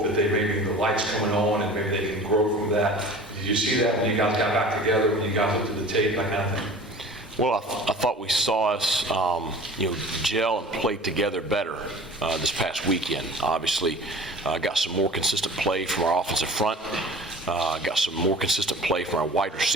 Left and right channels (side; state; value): both; normal; correlation 0.42